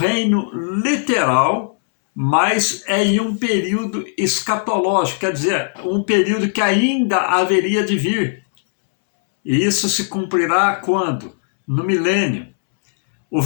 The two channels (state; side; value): silent; right; 67 dB below the other